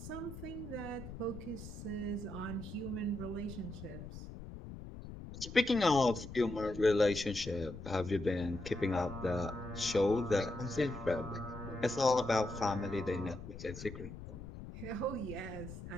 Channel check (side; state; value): left; noise; rumble, 11 dB below the sound